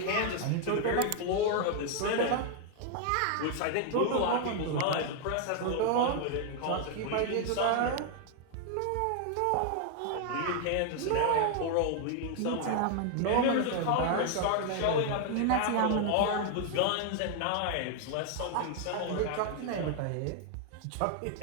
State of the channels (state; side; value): different; both; correlation 0.00